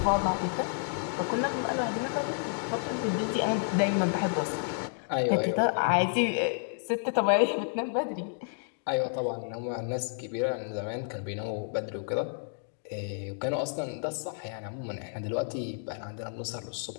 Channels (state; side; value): silent; right; digital silence